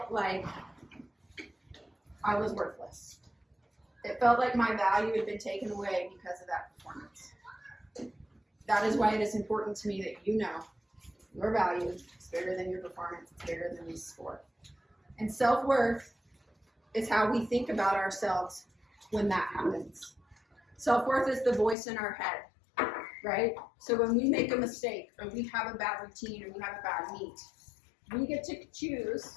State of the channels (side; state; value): right; drops out; at 21.8 s